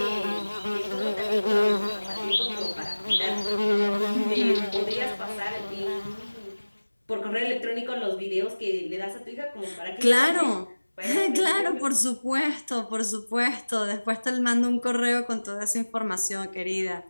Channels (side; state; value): both; inverted; correlation -1.00